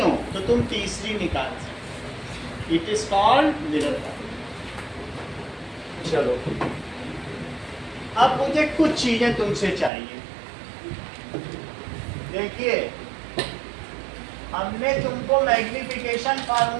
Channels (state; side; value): drops out; left; at 9.9 s